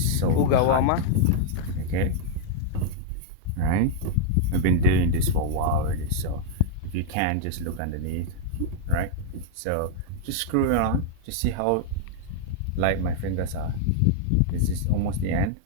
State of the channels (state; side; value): different; both; correlation 0.00